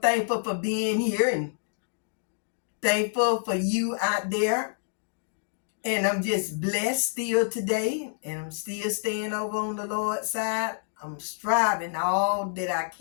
for being here and thankful for you out there. And I'm just blessed still today. And I'm still staying over on the Lord's side. I'm striving all that I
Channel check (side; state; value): right; silent; digital silence